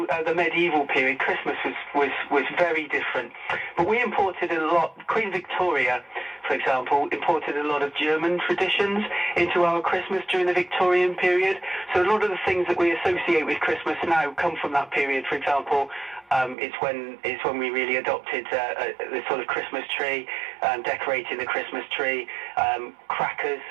the medieval period, Christmas was very different. But we imported a lot. Queen Victoria, for example, imported a lot of German traditions into our Christmas during the Victorian period. So a lot of the things that we associate with Christmas now come from that period. For example, it's when we really adopted the sort of Christmas tree, decorating the Christmas tree.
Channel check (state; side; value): drops out; left; at 16.6 s